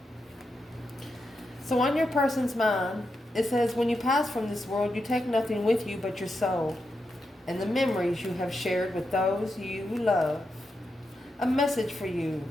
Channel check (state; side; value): normal; both; correlation 0.86